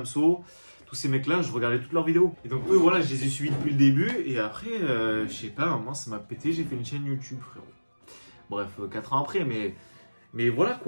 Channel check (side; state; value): both; inverted; correlation -1.00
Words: tous ces mecs-là, je regardais toutes leurs vidéos. Et donc, eux, voilà, je les ai suivis depuis le début. Et après, je sais pas, à un moment, ça m'a pété. J'ai fait une chaîne YouTube, frérot. Bref, 4 ans après, mais voilà,